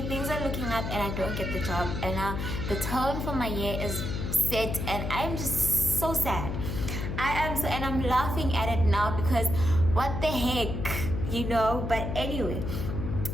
things are looking up, and I don't get the job. And now the tone for my year is set, and I'm just so sad. And I'm laughing at it now because what the heck, you know? But anyway,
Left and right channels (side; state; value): left; noise; hum, 3 dB below the sound